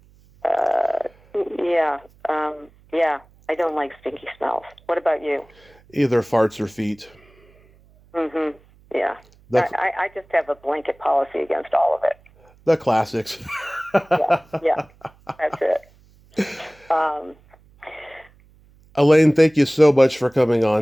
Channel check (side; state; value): right; noise; hum, 29 dB below the sound